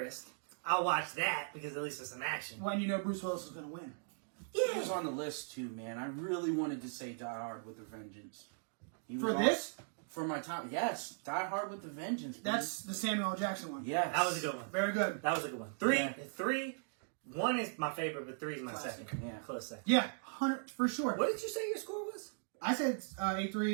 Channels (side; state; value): left; silent; digital silence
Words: I'll watch that because at least there's some action. When you know Bruce Willis is going to win. He was on the list too, man. I really wanted to say Die Hard with a Vengeance. For this? For my top, yes. Die Hard with a Vengeance. Please. That's the Samuel L. Jackson one. Yes. That was a good one. Very good. That was a good one. Three, one is my favorite, but 3 is my Classic. second. Yeah. Close second. Yeah, 100 for sure. What did you say your score was? I said